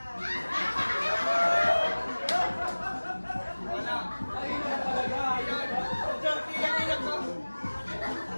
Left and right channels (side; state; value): both; inverted; correlation -1.00